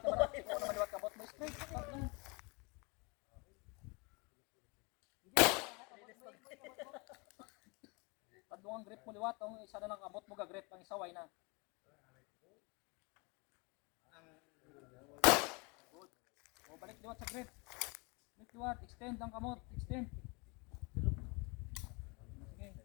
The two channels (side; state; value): right; quieter; 29.8 dB